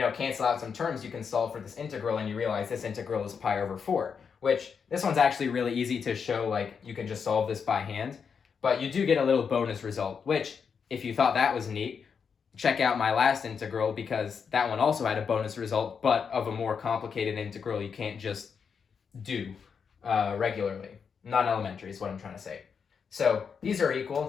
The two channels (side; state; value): right; quieter; 6.3 dB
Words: cancel out some terms, you can solve for this integral and you realize this integral is pi over 4, which this one's actually really easy to show, like you can just solve this by hand, but you do get a little bonus result, which if you thought that was neat, check out my last integral, because that one also had a bonus result, but of a more complicated integral you can't just do regularly. Non-elementary is what I'm trying to say. So these are equal,